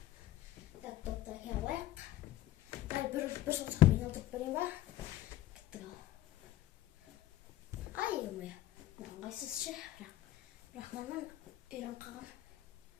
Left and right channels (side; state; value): right; quieter; 14.5 dB